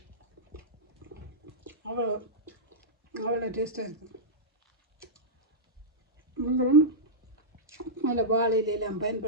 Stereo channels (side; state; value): both; normal; correlation -0.11